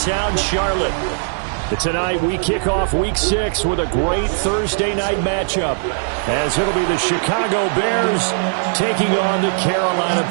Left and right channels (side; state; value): left; silent; 67 dB below the other